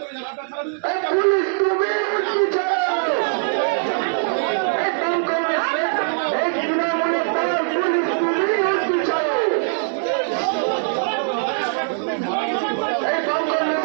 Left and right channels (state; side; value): silent; left; 65 dB below the other